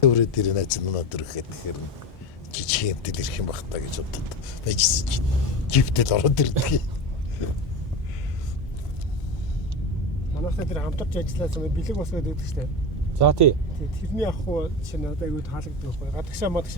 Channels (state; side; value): normal; both; correlation 0.22